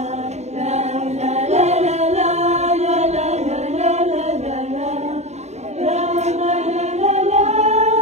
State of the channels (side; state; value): left; late; 0.32 ms